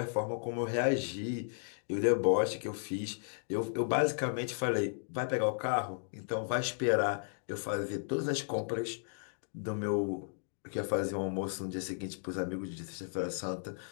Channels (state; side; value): silent; right; digital silence